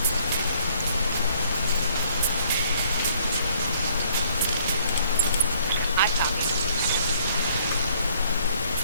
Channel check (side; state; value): both; inverted; correlation -0.63